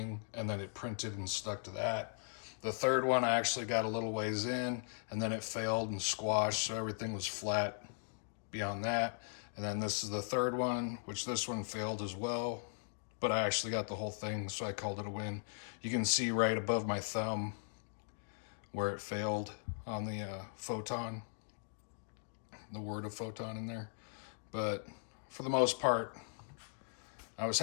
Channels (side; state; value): right; silent; digital silence